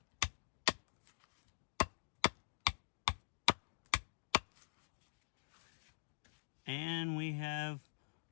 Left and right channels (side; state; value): right; silent; digital silence